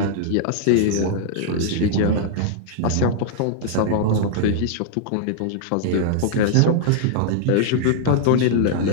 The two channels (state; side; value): different; both; correlation -0.01